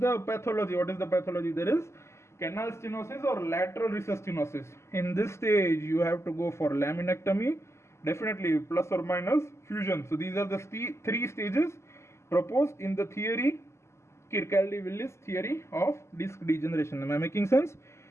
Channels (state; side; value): late; right; 0.13 ms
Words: pathology? There is canal stenosis or lateral recess stenosis. In this stage, you have to go for laminectomy, definitely plus or minus fusion. So these are the three stages proposed in the theory, Kirkcaldy-Willis theory of disc degeneration. Am I making sense?